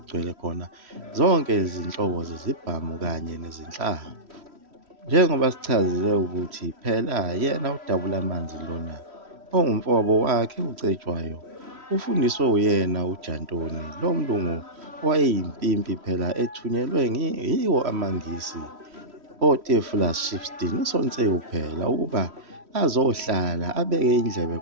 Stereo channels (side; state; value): left; late; 3.1 ms